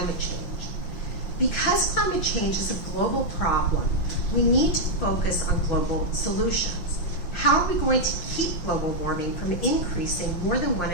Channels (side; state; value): right; late; 5.8 ms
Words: change. Because climate change is a global problem, we need to focus on global solutions. How are we going to keep global warming from increasing more than